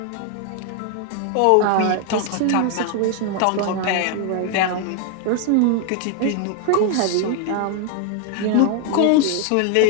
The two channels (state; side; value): different; both; correlation 0.00